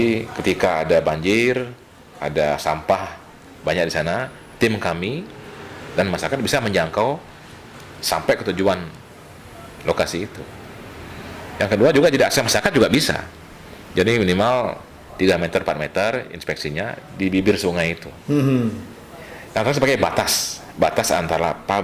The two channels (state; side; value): identical; both; correlation 1.00